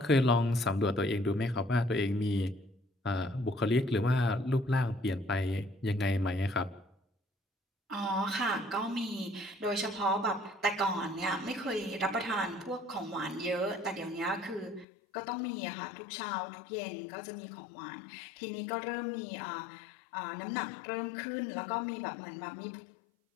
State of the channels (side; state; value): right; drops out; at 14.9 s